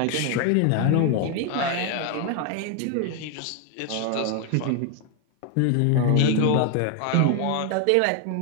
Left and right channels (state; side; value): different; both; correlation 0.01